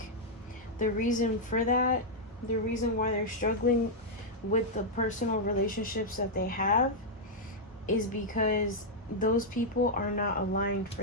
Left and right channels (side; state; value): both; normal; correlation -0.05